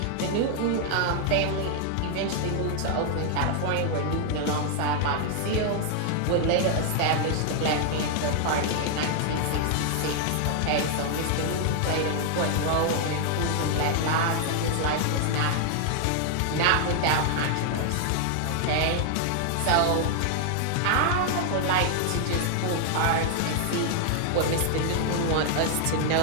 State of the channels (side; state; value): both; different; correlation 0.00